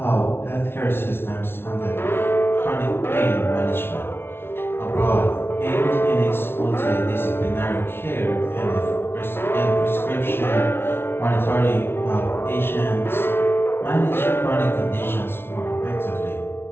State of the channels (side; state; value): right; late; 0.11 ms